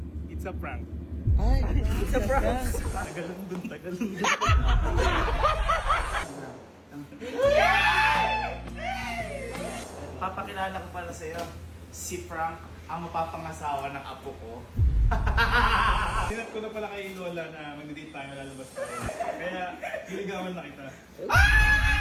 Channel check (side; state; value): both; identical; correlation 1.00